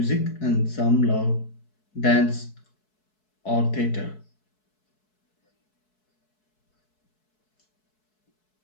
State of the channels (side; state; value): right; late; 4.6 ms